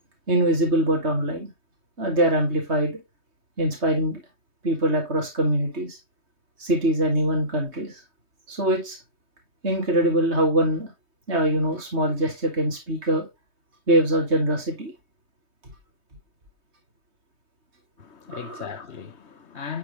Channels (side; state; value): left; late; 3.2 ms